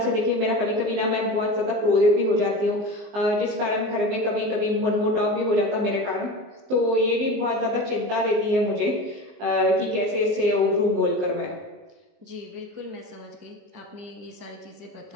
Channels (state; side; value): late; left; 19 ms